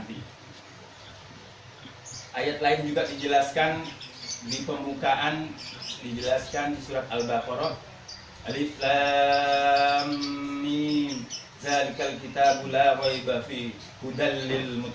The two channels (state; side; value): identical; both; correlation 1.00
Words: Ayat lain juga dijelaskan di pembukaan, dijelaskan di surat Al-Baqarah, Alif Lam Mim, Zalikal kitabu la raiba fi hudal lil